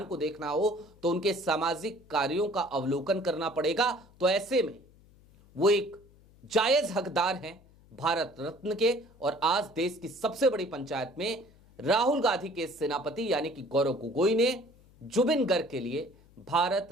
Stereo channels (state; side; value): noise; left; hum, 27 dB below the sound